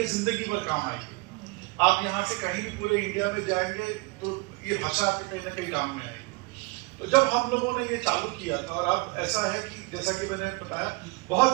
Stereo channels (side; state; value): left; quieter; 27.0 dB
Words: जिंदगी भर काम आएगी। आप यहाँ से कहीं भी पूरे इंडिया में जाएंगे तो ये भाषा आपके कहीं ना कहीं काम में आएगी। तो जब हम लोगों ने ये चालू किया था, और अब ऐसा है कि जैसा कि मैंने बताया,